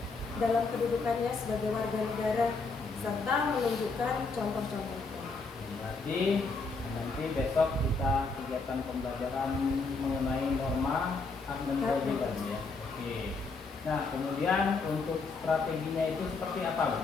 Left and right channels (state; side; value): quieter; right; 4.1 dB